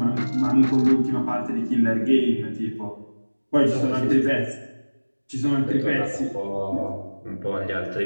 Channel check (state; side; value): inverted; both; correlation -1.00